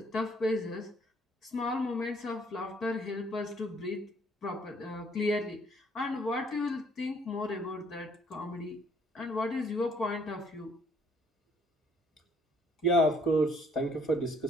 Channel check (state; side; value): normal; both; correlation 0.64